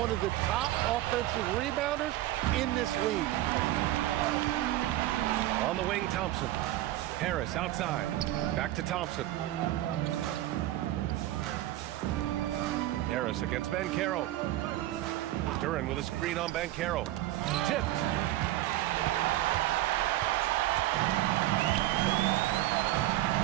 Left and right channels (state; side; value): quieter; left; 15.2 dB